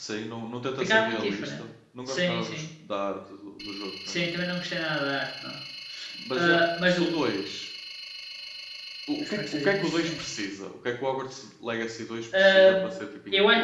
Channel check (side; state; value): both; identical; correlation 1.00